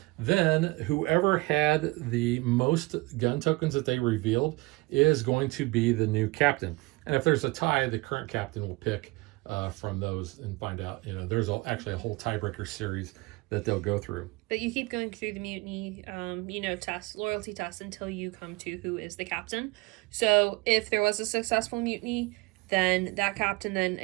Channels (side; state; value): left; quieter; 23.6 dB